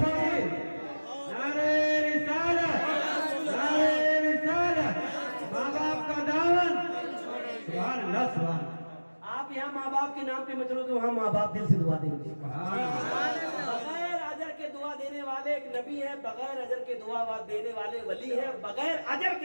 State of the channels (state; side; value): inverted; both; correlation -1.00